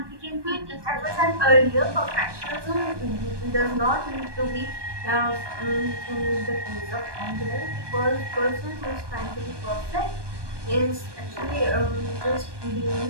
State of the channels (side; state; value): left; late; 1.2 ms